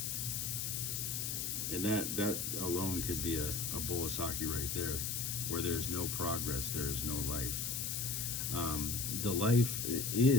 And that alone could be a bowl of sake right there. Where there is no progress, there is no life. The life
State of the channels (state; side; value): noise; left; hiss, 1 dB below the sound